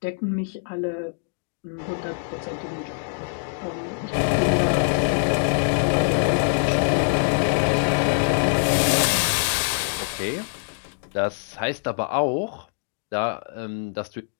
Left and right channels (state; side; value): silent; right; digital silence